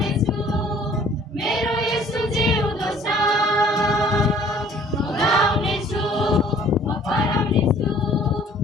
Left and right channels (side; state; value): both; normal; correlation 0.55